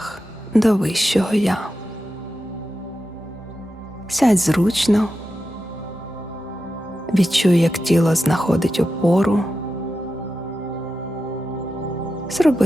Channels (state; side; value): normal; both; correlation 0.90